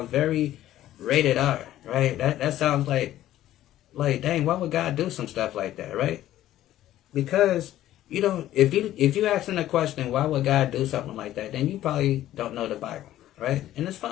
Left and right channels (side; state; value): right; quieter; 13.5 dB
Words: very rated R, right? That sounds like dang, why would God do some stuff like that, right? Because you don't, if you asking a question, why would God do something like that, then you probably don't know the Bible, right? And it's fine.